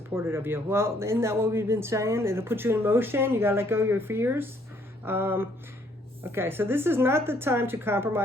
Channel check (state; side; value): normal; both; correlation 0.65